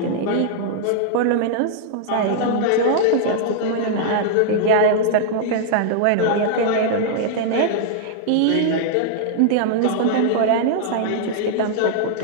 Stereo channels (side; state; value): both; different; correlation -0.01